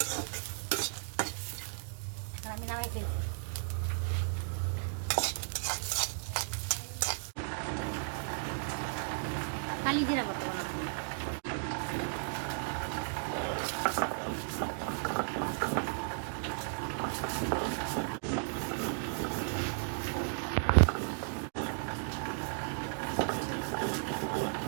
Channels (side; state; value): left; silent; digital silence